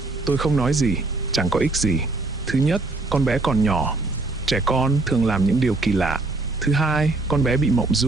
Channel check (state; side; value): quieter; left; 3.2 dB